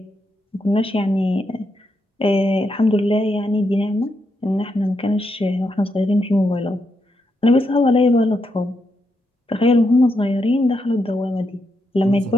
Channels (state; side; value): normal; both; correlation 0.82